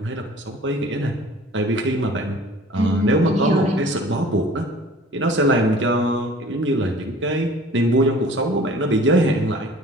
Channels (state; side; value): normal; both; correlation 0.47